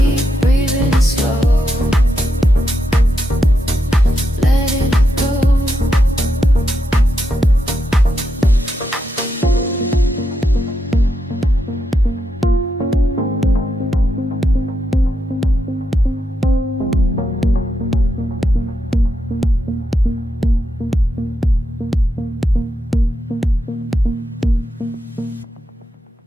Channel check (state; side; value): normal; both; correlation 0.83